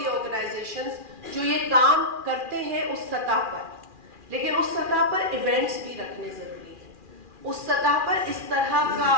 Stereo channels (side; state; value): left; late; 2.4 ms